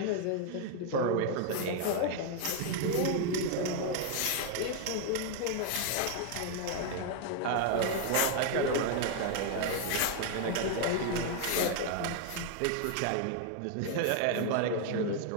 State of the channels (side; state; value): both; different; correlation 0.00